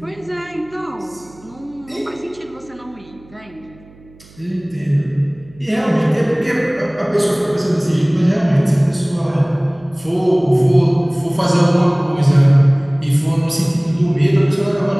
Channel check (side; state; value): right; noise; hum, 25 dB below the sound